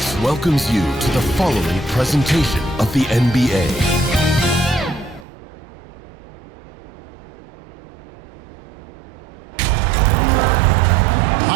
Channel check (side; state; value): left; drops out; at 5.2 s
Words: welcomes you to the following presentation of the NBA.